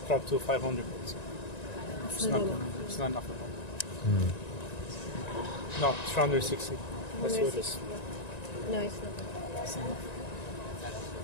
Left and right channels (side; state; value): right; late; 1.9 ms